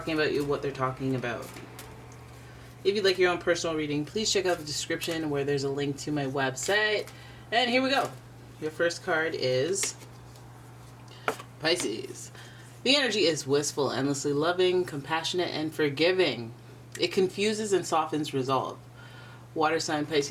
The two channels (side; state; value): both; identical; correlation 1.00